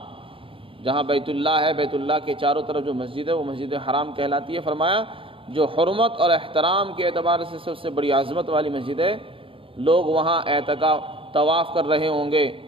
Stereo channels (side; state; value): left; late; 0.26 ms